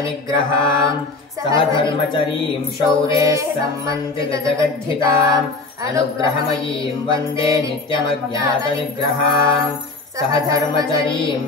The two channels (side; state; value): right; quieter; 3.5 dB